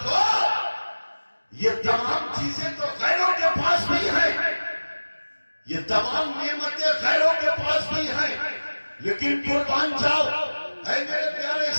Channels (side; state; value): both; inverted; correlation -1.00